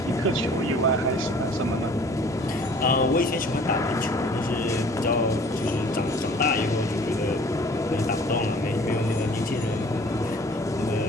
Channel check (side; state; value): both; normal; correlation 0.51